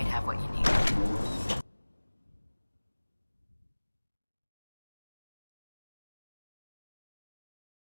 have what you need.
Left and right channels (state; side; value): inverted; both; correlation -1.00